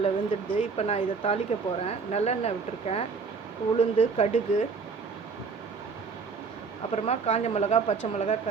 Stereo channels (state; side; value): quieter; left; 5.0 dB